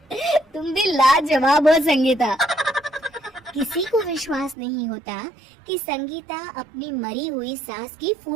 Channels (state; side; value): drops out; left; at 4.5 s